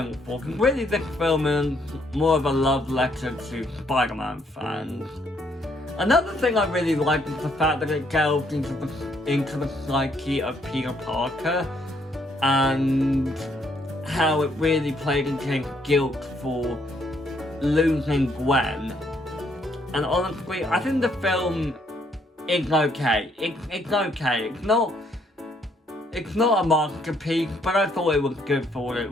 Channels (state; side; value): normal; both; correlation 0.70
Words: for, because really this film is more of a love letter to Spider-Man fans. Another thing I really like is the fact that it delved into the psyche of Peter Parker and how it really played into his guilt for losing Gwen. And honestly, I think the film is okay. It's okay. It's not a masterpiece, but I thought it was good for what it